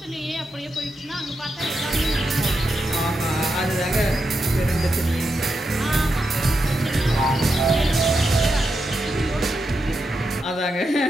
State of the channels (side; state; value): both; normal; correlation 0.86